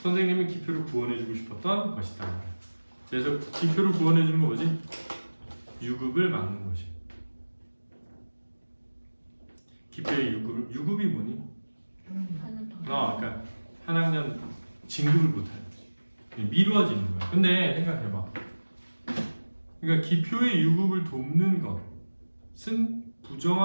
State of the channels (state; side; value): inverted; both; correlation -1.00